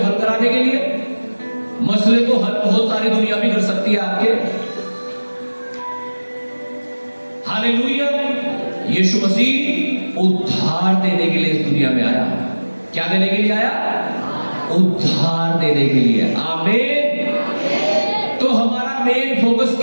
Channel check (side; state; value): both; inverted; correlation -1.00